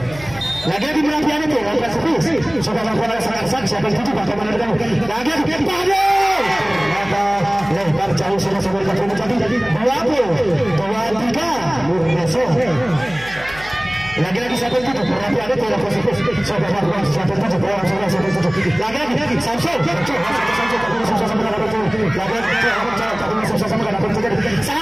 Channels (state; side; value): noise; right; hum, 18 dB below the sound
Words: Lagi-lagi penampilan itu langkah servis sudah melakukan sangat siapa yang tujuh bagaimana dengan lagi-lagi ternyata lebar jauh sudah menjadi 20-23 Murneso. Lagi-lagi siapa itu? Berarti ada tidak positif. Siapa yang siapa itu? Lagi-lagi Samsul. Samsul sama dengan apa itu? Lagi-lagi sama dengan apa itu?